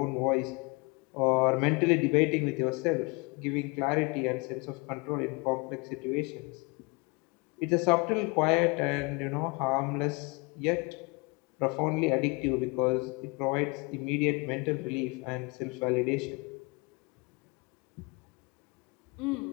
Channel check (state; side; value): quieter; right; 28.8 dB